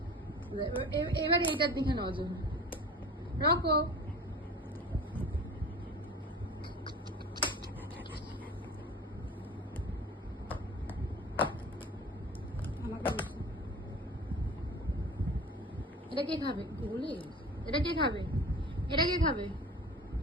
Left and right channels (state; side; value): normal; both; correlation 0.38